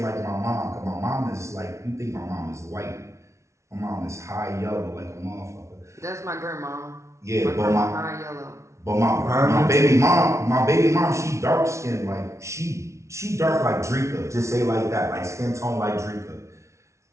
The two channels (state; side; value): late; left; 0.14 ms